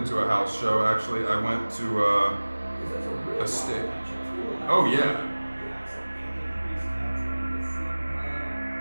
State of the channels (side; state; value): both; inverted; correlation -1.00